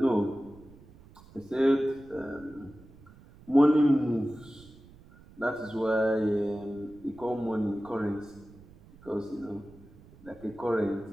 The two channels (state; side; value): noise; right; rumble, 23 dB below the sound